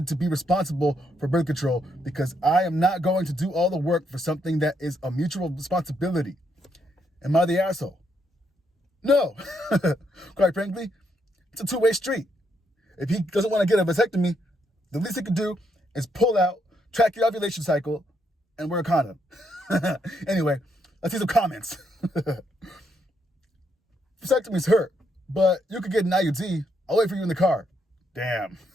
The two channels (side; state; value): both; normal; correlation 0.76